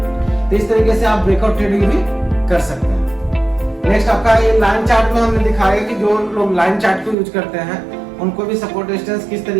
तो इस तरीके से आप ब्रेकआउट ट्रेडिंग भी कर सकते हैं। नेक्स्ट आपका ये लाइन चार्ट में हमने दिखाया कि जो लोग लाइन चार्ट को यूज करते हैं उनको भी सपोर्ट रेजिस्टेंस किस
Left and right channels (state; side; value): drops out; left; at 7.2 s